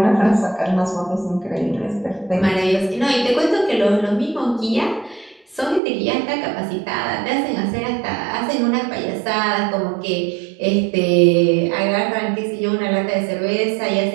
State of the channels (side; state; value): left; drops out; at 5.8 s